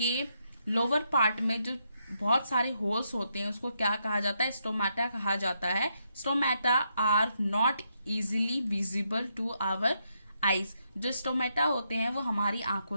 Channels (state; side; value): inverted; both; correlation -0.79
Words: लोअर पार्ट में जो बहुत सारे होल्स होते हैं उसको क्या कहा जाता है, स्टोमेटा कहा जाता है. Stomata are not easily visible to our eyes. जो स्टोमेटा होते हैं वो हमारी